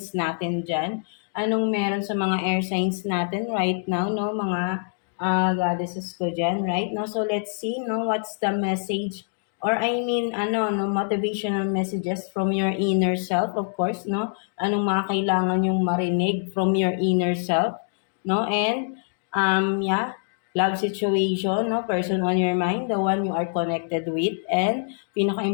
natin dyan? Anong meron sa mga air signs natin right now, no? Mga goddesses ko dyan, right? No? So, let's see, no? What's the message or I mean, no, motivational messages from your inner self, of course, no? Anong mga kailangan yung marinig from your inner self, no? And, yeah, love situation, no? Person on your mind, the one you are connected with, and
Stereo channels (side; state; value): right; silent; digital silence